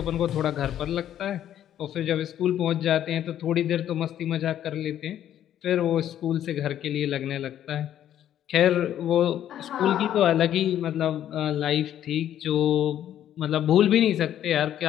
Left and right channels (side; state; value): right; quieter; 11.0 dB